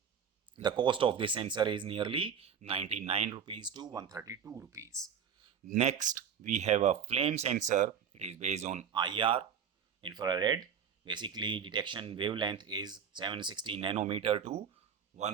The cost of this sensor is nearly 99 rupees to 132 rupees. Next, we have a flame sensor. It is based on IR, infrared. Basically, detection wavelength is 760 nanometer to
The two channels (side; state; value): left; quieter; 7.5 dB